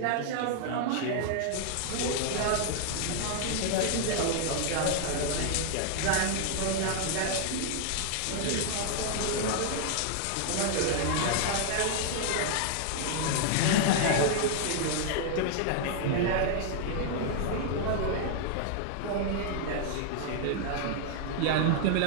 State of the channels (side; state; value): both; different; correlation 0.00